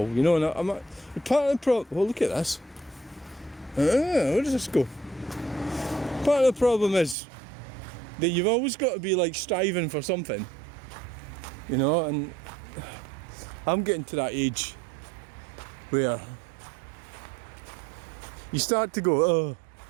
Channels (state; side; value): drops out; left; at 7.2 s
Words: you know, and I'm part of the problem. Well, look at this. Where does this go? Part of the problem is that you've always got to be like striving for something. you know, and I'm getting to that age where you start to go, oh,